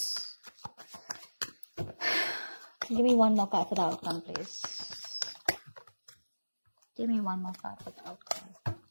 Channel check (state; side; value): inverted; both; correlation -1.00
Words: Give me one more card for the outcome, please. Give me one more card for the outcome.